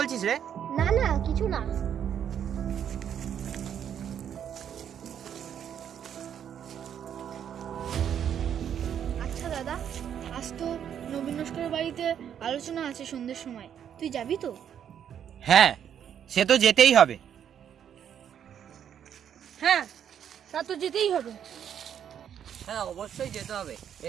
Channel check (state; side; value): quieter; left; 9.0 dB